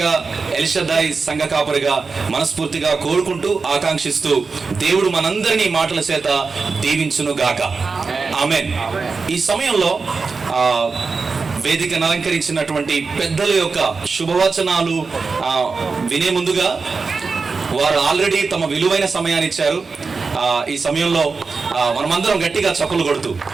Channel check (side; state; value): left; quieter; 4.5 dB